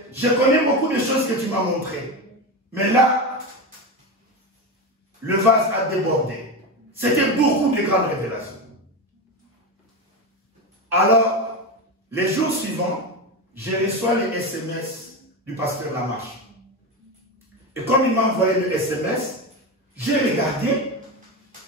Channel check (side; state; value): both; normal; correlation 0.18